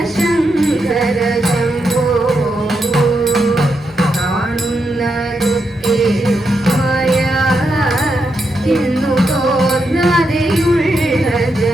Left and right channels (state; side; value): normal; both; correlation 0.83